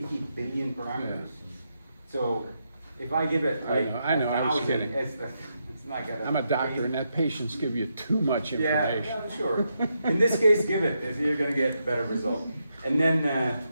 billion parameters. So if I give it like I know, I was 1,000, kidding. it's not gonna. I'm a doctor, and that patients give you too much information. Yeah, sure. In this case, give it, if you're gonna get better result. And then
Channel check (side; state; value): both; inverted; correlation -0.82